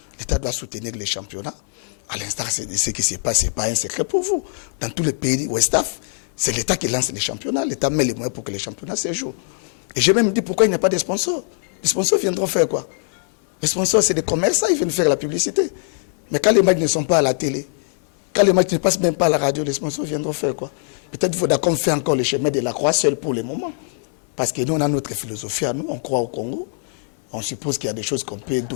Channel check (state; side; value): silent; right; 58 dB below the other